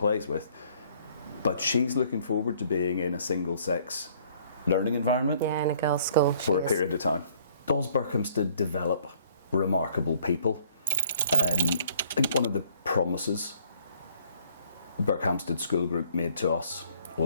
with, but she's looking forward to being in a single-sex learning environment. Yeah, in a girls' school. For a period of time. Does Berkhamsted develop remarkable people? I think one of the promises Berkhamsted School Group made to us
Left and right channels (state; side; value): inverted; both; correlation -0.61